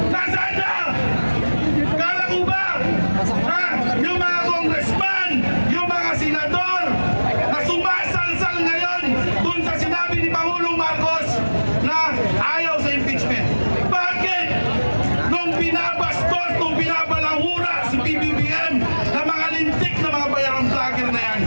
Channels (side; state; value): both; inverted; correlation -1.00